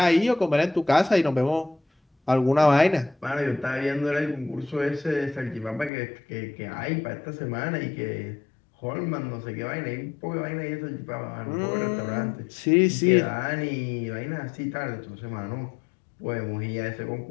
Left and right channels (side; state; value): right; drops out; at 5.9 s